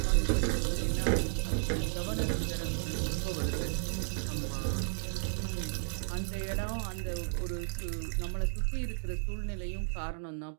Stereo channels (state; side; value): silent; left; digital silence